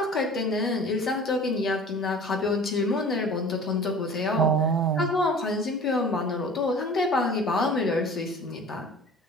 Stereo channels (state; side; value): normal; both; correlation 0.43